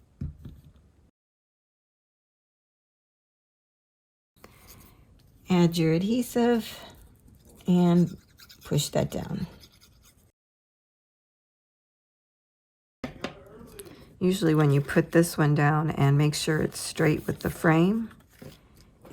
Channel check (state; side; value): identical; both; correlation 1.00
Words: add your adhesive and push that down. Usually when you put this one down and make sure it's straight with the frame,